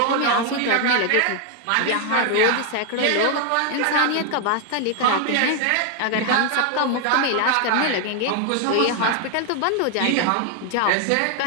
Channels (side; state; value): both; different; correlation 0.00